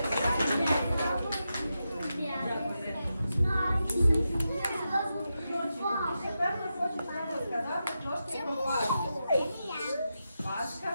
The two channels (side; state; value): both; inverted; correlation -0.89